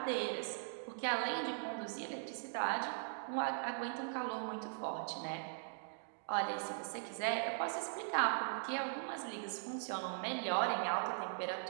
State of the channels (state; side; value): silent; left; digital silence